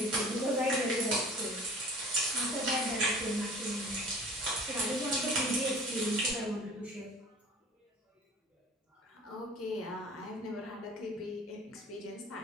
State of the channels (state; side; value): normal; both; correlation 0.45